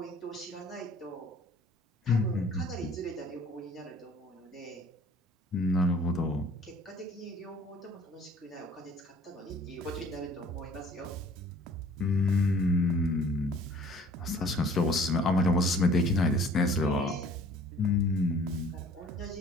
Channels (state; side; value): normal; both; correlation 0.52